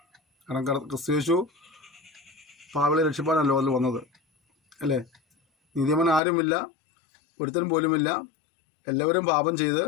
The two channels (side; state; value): right; drops out; at 6.2 s